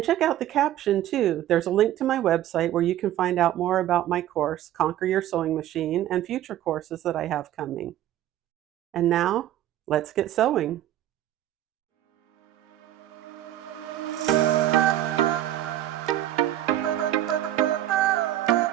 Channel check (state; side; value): quieter; left; 12.9 dB